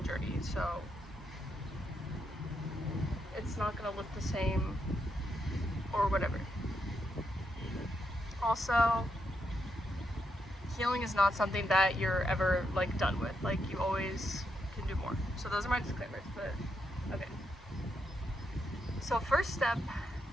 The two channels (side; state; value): both; normal; correlation 0.81